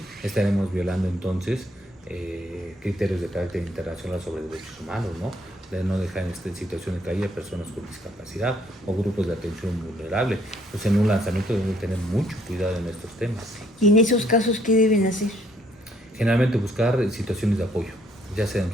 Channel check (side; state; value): both; normal; correlation 0.67